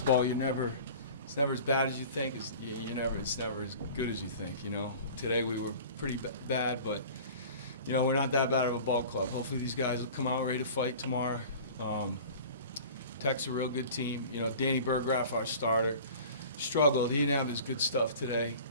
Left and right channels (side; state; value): both; inverted; correlation -0.41